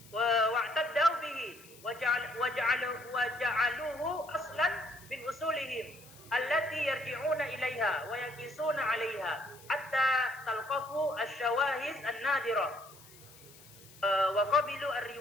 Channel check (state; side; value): noise; left; hiss, 22 dB below the sound